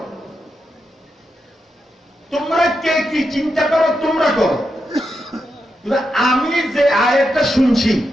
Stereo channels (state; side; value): normal; both; correlation 0.85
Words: তোমরা কে কি চিন্তা করো তোমরা করো, আমি যে আয়াতটা শুনছি